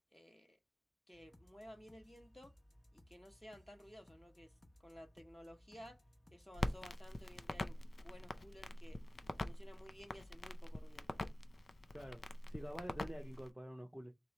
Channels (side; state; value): both; normal; correlation 0.97